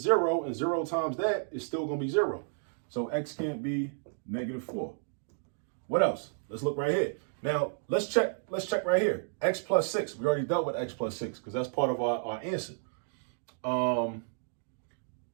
0 and 0 times that is still going to be 0. So x can't be negative 4. What else? Let's look right here. Now, let's check right here. X plus 6. We already dealt with x plus 6 because that's part of our answer.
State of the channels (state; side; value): silent; left; digital silence